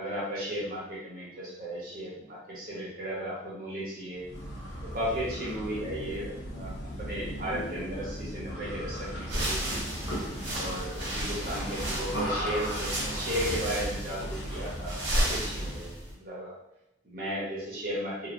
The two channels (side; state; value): both; normal; correlation 0.37